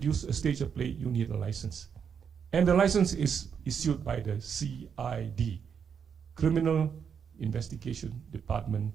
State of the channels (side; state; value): left; quieter; 7.1 dB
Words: a stage play, you need a license. And the license is issued by the CID, Criminal Investigation Department